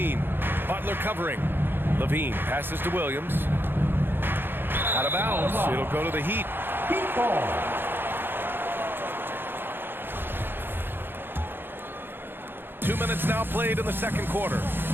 Butler covering. Levine passes to Williams. Out of bounds. It'll go to the Heat. Heat ball. Two minutes now played in the second quarter.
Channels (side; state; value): left; late; 0.10 ms